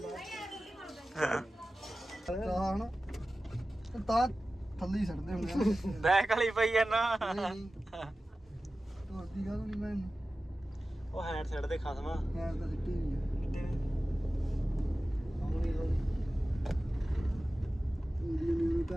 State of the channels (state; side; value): normal; both; correlation 0.95